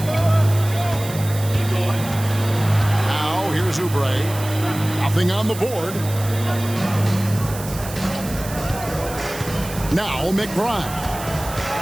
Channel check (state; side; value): noise; right; hiss, 12 dB below the sound